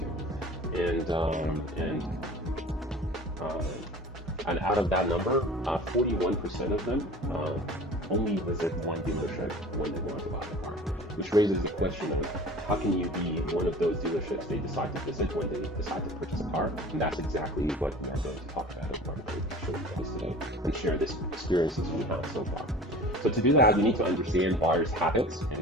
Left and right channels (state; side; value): normal; both; correlation 0.41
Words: And out of that number, 41% of them only visit one dealership when they want to buy a car, which raises the question of how can you be one of those dealerships they decide to visit when they decide to purchase a car? And that's exactly what we are going to talk about as part of the show you guys today and share this experiences we have so far. So to do that, we need to understand buyers' habits